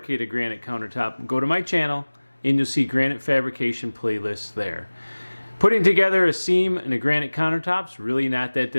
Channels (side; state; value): both; inverted; correlation -1.00